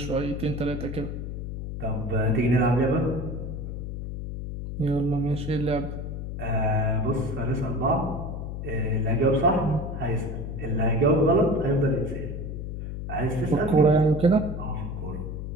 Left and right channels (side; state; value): left; noise; hum, 6 dB below the sound